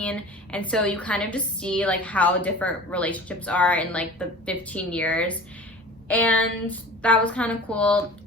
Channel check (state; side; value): normal; both; correlation 0.40